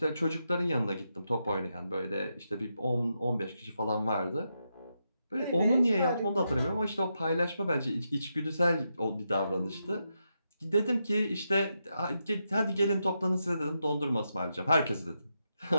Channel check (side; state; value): both; inverted; correlation -0.84